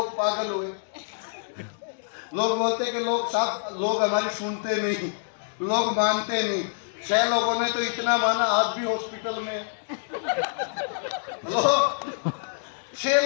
पागल हुए। लोग बोलते कि लोग हमारी सुनते नहीं, लोग मानते नहीं। 6 लोगों ने तो इतना माना, आज भी हॉस्पिटल में। लोग 6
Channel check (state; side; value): silent; right; digital silence